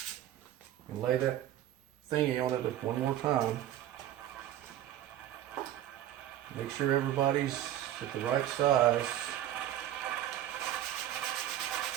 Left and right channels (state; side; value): quieter; left; 12.4 dB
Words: and lay that thingy on it one more time. Make sure everybody's at the right size